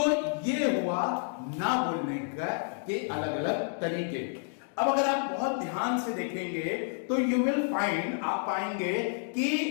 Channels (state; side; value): silent; right; 58 dB below the other